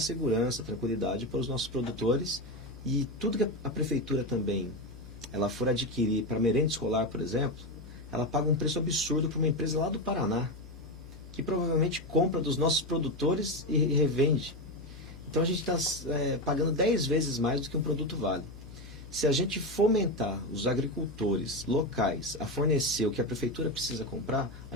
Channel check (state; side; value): noise; right; hum, 23 dB below the sound